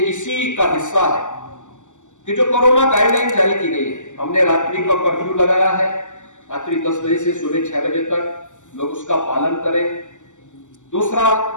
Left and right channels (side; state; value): right; late; 0.85 ms